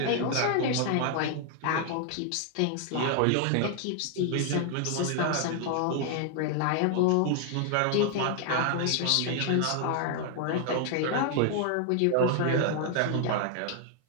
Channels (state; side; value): different; both; correlation 0.00